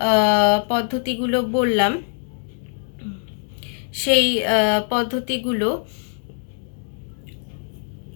পদ্ধতিগুলো বললাম সেই পদ্ধতিগুলো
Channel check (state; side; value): silent; right; digital silence